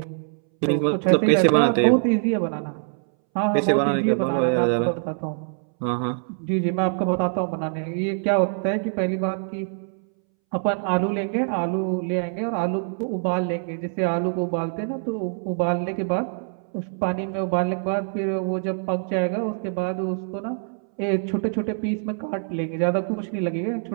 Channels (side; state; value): left; silent; 62 dB below the other